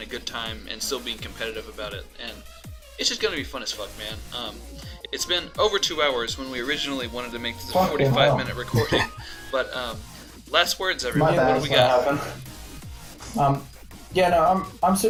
a good time and still being competitive about it. And it's just going to be fun as fuck, man. It's been over 2 hours when we originally wanted to make this a 45-minute recording, but last words, everyone. What do we got? I'm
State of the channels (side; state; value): both; identical; correlation 1.00